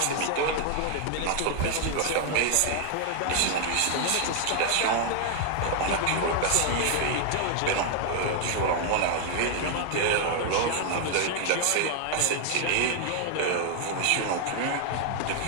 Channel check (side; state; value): both; different; correlation 0.00